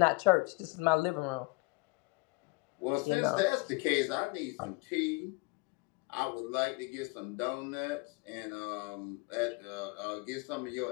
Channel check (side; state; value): right; quieter; 27.0 dB